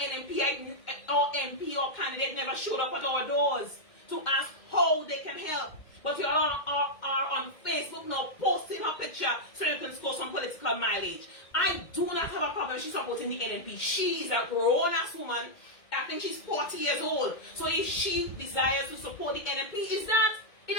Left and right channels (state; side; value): late; right; 2.2 ms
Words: or MP or candidate never showed up at our doors to ask how they can help. But you all are on Facebook now posting her picture so you can score some political mileage. I do not have a problem she's supporting the NMP. She is a grown-ass woman. I think she's 40 years old. So if she desires to support the NMP, it